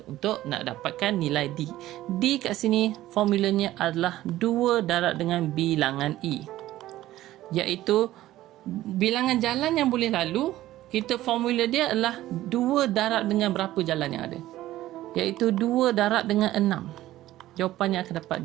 untuk nak dapatkan nilai D. D kat sini formulanya adalah 2 darab dengan bilangan E. Iaitu bilangan jalan yang boleh lalu, kita formula dia adalah 2 darab dengan berapa jalan yang ada. Iaitu 2 darab dengan 6. Jawapannya akan dapat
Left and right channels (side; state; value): left; quieter; 15.0 dB